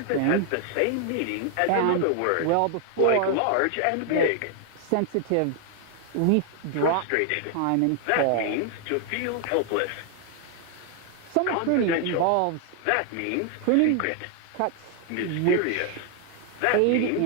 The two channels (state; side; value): different; both; correlation 0.00